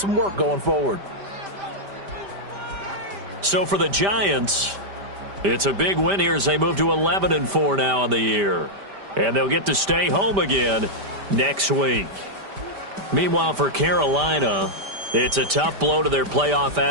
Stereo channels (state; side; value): late; left; 5.1 ms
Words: work going forward. So for the Giants, it's a big win here as they move to 11-4 now in the year. And they'll get to stay home again next week. Meanwhile, for Carolina, it's a tough blow to their playoff